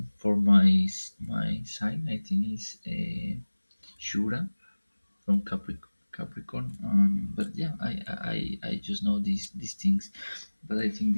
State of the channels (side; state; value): both; inverted; correlation -1.00